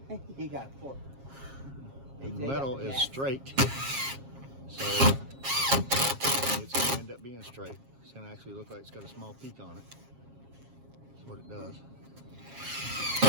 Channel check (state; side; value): late; left; 7.4 ms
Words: He got a fork. The metal is straight, so it's going to end up being straight. It's going to actually look like it's got a small peak on it. That's what it does.